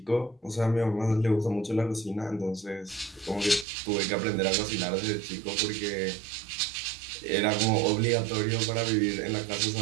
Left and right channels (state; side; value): drops out; left; at 3.7 s